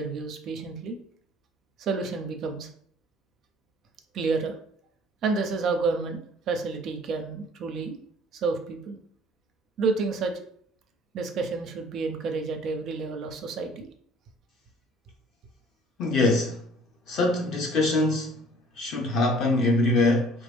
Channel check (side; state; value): both; normal; correlation 0.53